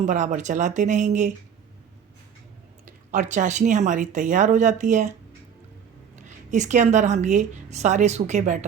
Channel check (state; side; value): quieter; left; 7.7 dB